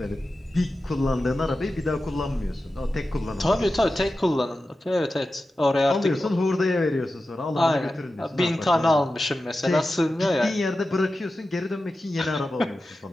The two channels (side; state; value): both; normal; correlation 0.93